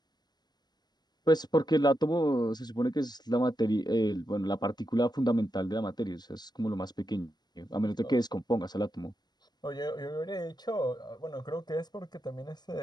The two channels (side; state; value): right; late; 0.20 ms